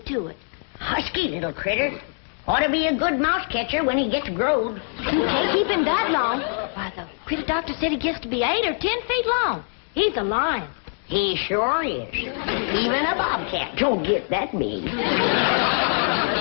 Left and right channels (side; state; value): right; silent; 63 dB below the other